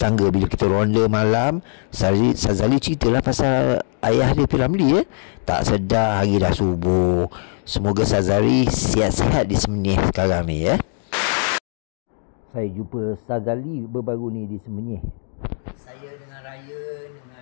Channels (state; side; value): silent; right; digital silence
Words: Bila kita ronda malam, Sazali ceritalah pasal ayah dia P. Ramlee ya. Tak sedar hari dah subuh. Semoga Sazali sihat-sihat di Semenyih sekarang ni ya. Saya jumpa Sazali baru-baru ni di Semenyih. Saya dengan Raya,